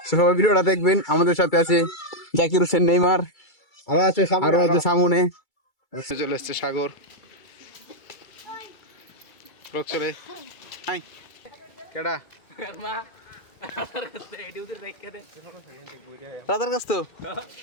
So, সবাই ভিডিওটা দেখবেন। আমাদের সাথে আছে জাকির হোসেন, নেইমার, আরো আছে সামনে। চলে এসছে সাগর, ব্লগ চলে। হাই কেডা রাজার কাছ তো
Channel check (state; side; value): late; right; 2.3 ms